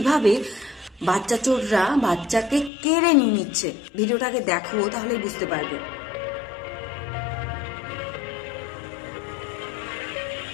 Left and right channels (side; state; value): right; drops out; at 2.7 s